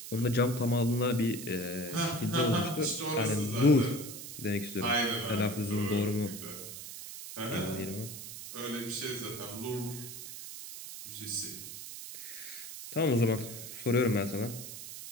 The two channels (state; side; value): noise; right; hiss, 10 dB below the sound